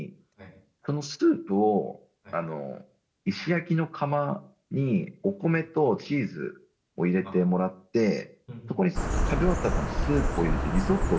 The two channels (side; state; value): both; identical; correlation 1.00